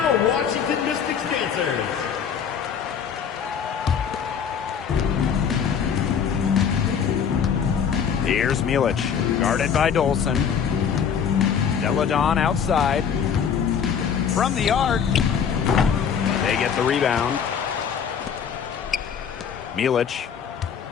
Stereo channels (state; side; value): quieter; right; 7.4 dB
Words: Washington Mystics dancers. Here's Milic, guarded by Dolson. Deladon outside. From the arc. They get the rebound. Milic.